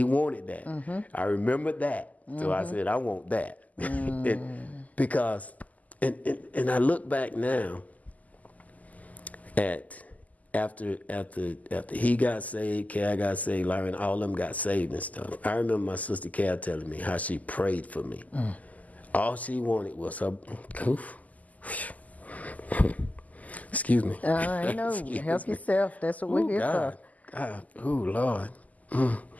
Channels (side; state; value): right; late; 0.077 ms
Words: wanted that. I remember that. So I said, I want that. Because I look back now at after he got saved, Cal got saved, Larry, all of them got saved and stuff. I remember my sister Cal telling me how she prayed for me. All she wanted was her. Excuse me. I know. Help yourself. That's what we're here for. God. Oh, Lord.